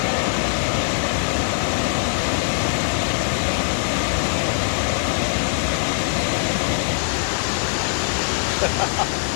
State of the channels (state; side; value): silent; right; digital silence